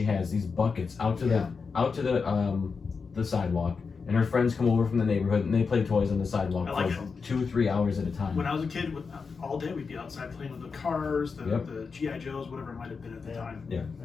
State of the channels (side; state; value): right; quieter; 5.1 dB